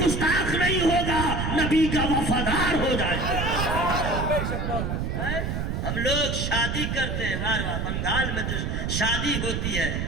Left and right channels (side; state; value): right; noise; rumble, 1 dB below the sound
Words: نہیں ہوگا، نبی کا وفادار ہو جائے گا۔ ہم لوگ شادی کرتے ہیں، بنگال میں جو شادی ہوتی ہے،